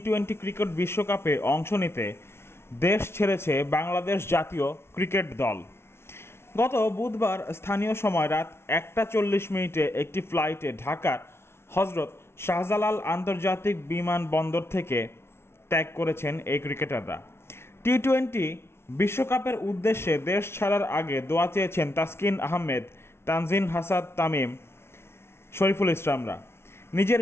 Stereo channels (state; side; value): late; right; 0.12 ms